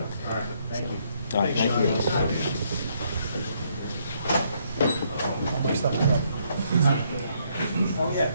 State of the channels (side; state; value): both; inverted; correlation -0.71